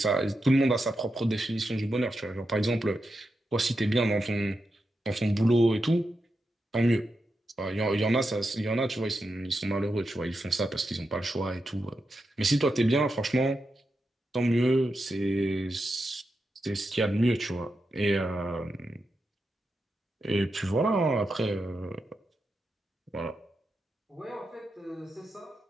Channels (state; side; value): normal; both; correlation 0.87